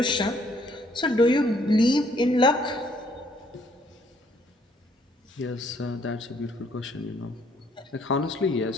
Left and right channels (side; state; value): both; normal; correlation 0.65